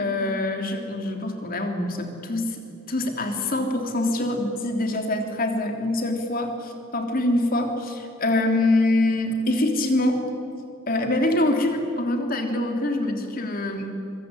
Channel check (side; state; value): both; normal; correlation 0.57